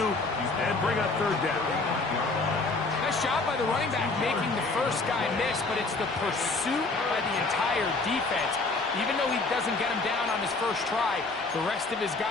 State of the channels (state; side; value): quieter; right; 3.6 dB